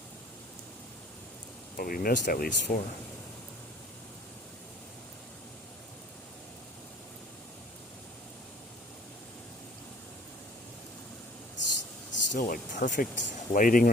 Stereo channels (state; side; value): normal; both; correlation 0.52